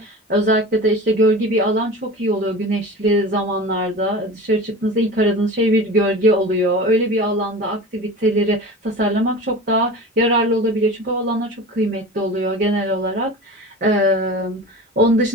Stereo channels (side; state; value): both; normal; correlation 0.34